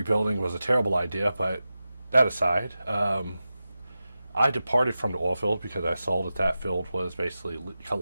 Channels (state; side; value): inverted; both; correlation -0.93